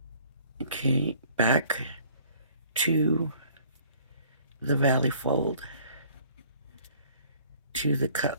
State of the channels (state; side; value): inverted; both; correlation -0.56